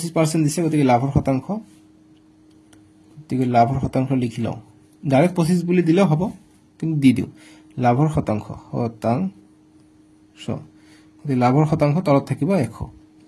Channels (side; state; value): both; identical; correlation 1.00